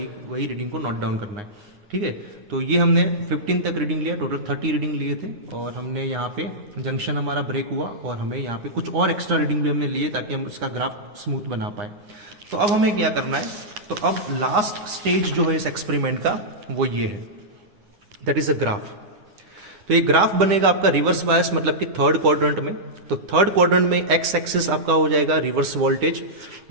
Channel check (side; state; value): left; late; 9.8 ms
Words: रीडिंग को नोट डाउन करना है, ठीक है। तो ये हमने 15 तक रीडिंग लिया, टोटल 30 रीडिंग लिए थे, और हमने यहाँ पे जंक्शन हमारा ब्रेक हुआ और हमें यहाँ पे कुछ और एक्स्ट्रा रीडिंग भी हमने लिए ताकि हम इसका ग्राफ स्मूथ बना पाए। तो अब हमें क्या करना है, तो अब लास्ट स्टेज जो है इस एक्सपेरिमेंट का वो ये है, दैट इज अ ग्राफ। तो ये ग्राफ बनेगा आपका रिवर्स बायस मतलब कि थर्ड क्वाड्रेंट में। तो थर्ड क्वाड्रेंट में एक्स एक्सिस आपका हो जाएगा रिवर्स वोल्टेज,